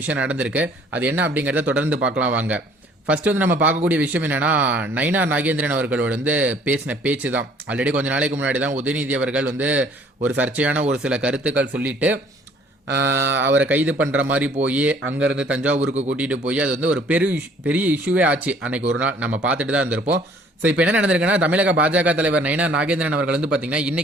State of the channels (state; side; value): normal; both; correlation 0.57